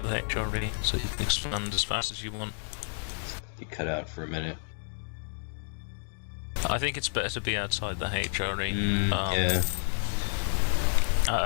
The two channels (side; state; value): right; silent; digital silence